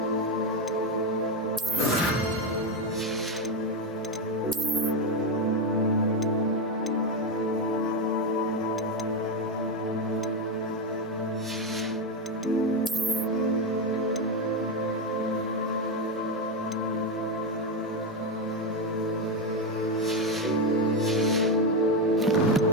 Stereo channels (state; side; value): normal; both; correlation 0.11